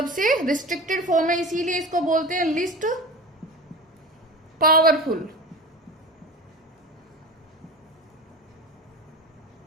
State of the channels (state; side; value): normal; both; correlation 0.32